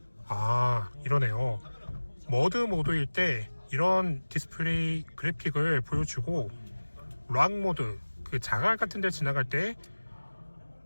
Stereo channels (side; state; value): both; inverted; correlation -1.00